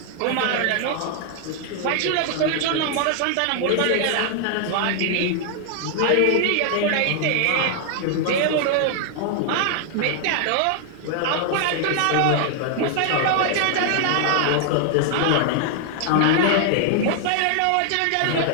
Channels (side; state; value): both; different; correlation 0.00